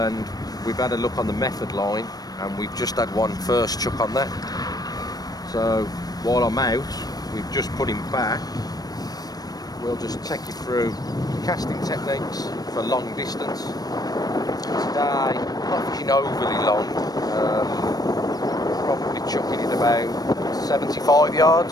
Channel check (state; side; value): late; right; 0.19 ms